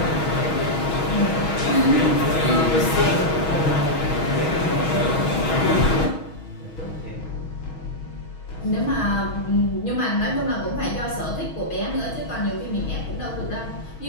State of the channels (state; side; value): late; right; 6.3 ms